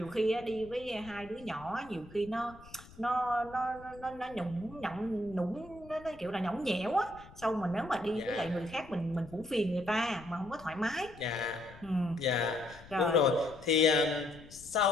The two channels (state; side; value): noise; left; rumble, 20 dB below the sound